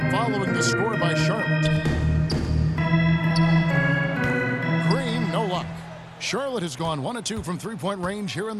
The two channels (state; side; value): identical; both; correlation 1.00